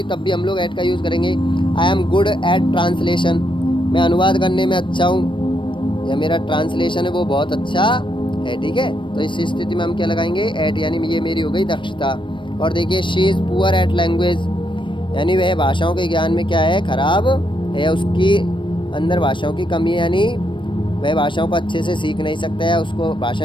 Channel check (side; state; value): right; late; 0.24 ms